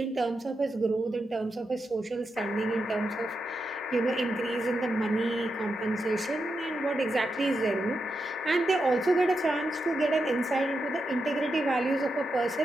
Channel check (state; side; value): normal; both; correlation 0.86